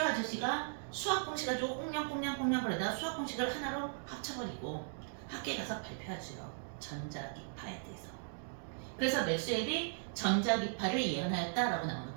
아저씨가 수학 공식 가지고 꽁냥꽁냥 그러다 수학 공식을 하나로 합쳐버리고 학교에 가서 발표하죠. 전자기파에 대해서. 그래서 맥스웰이 전자기파를 예언하였다라고 나오는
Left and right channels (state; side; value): silent; left; digital silence